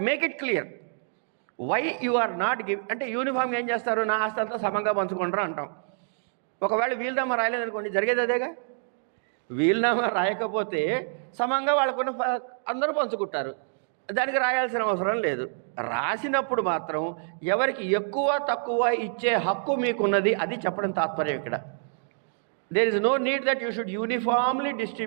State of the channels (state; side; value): silent; left; digital silence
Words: make it clear why you are not give. అంటే యూనిఫామ్గా ఏం చేస్తారు, నా ఆస్తి అంతా సమంగా పంచుకుంటారు అంటాం. ఒకవేళ వీలునామా రాయలేదనుకోండి, జరిగేది అదేగా. వీలునామా రాయకపోతే సమంగా వాళ్ళకున్న అందరూ పంచుకుంటారు, దానికి రాయాల్సిన అవసరం లేదు. రాసినప్పుడు మాత్రం ఎవరికి ఎక్కువ తక్కువ ఇచ్చే హక్కు మీకున్నది, అది చెప్పడం తాత్పర్యం ఇక్కడ. There is no need that you should uniformly